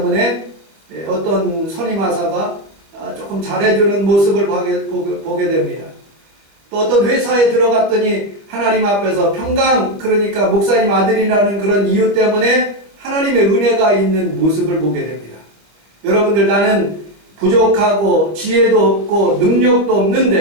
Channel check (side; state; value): left; late; 25 ms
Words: 어떤 선임하사가 조금 잘해주는 모습을 보게 됩니다. 또 어떤 회사에 들어갔더니 하나님 앞에서 평강, 그러니까 목사님 아들이라는 그런 이유 때문에 하나님의 은혜가 있는 모습을 보게 됩니다. 여러분들, 나는 부족하고 지혜도 없고 능력도